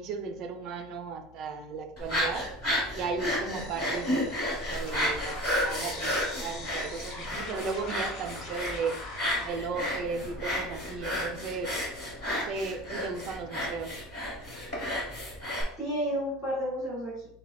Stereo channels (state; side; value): noise; left; hum, 24 dB below the sound